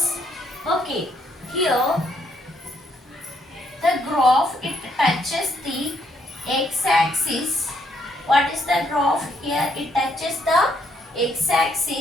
Okay, here the graph, it touches the x-axis. What is the graph? Here it touches the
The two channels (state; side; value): normal; both; correlation 0.72